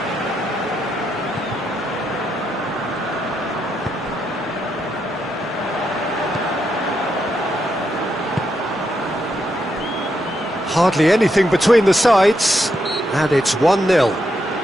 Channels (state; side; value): normal; both; correlation 0.81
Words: Hardly anything between the sides, and it's 1-0.